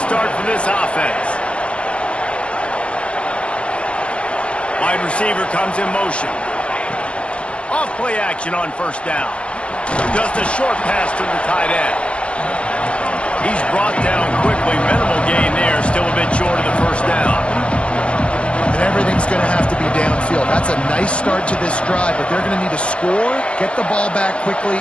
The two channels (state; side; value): late; right; 0.059 ms